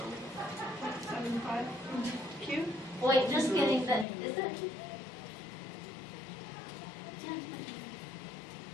75. Q? Wait, just kidding. That is that.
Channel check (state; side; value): drops out; right; at 4.0 s